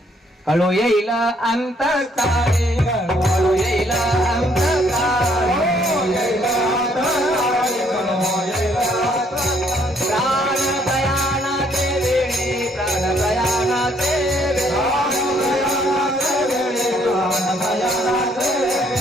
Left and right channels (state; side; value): normal; both; correlation 0.67